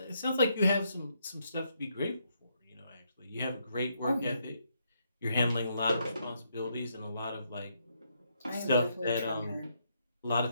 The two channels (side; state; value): both; inverted; correlation -0.75